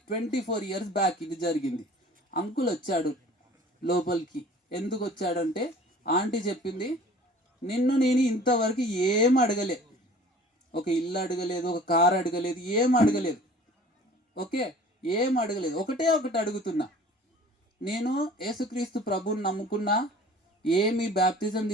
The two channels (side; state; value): both; normal; correlation 0.47